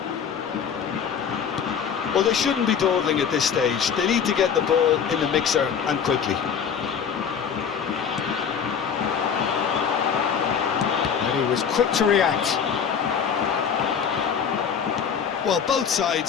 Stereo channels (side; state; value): right; quieter; 7.3 dB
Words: Well, they shouldn't be dawdling at this stage. They need to get the ball in the mixer, and quickly. And he was quick to react. Well, both